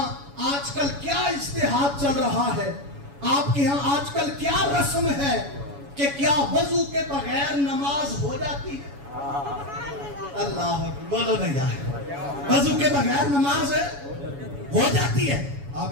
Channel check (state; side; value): late; left; 7.1 ms